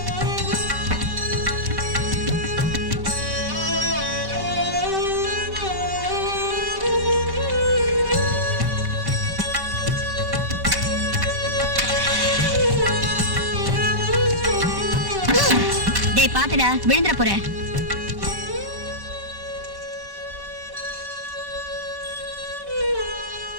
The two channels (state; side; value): late; left; 5.2 ms